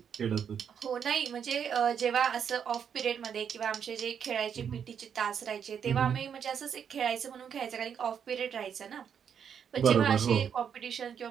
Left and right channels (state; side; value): quieter; left; 7.8 dB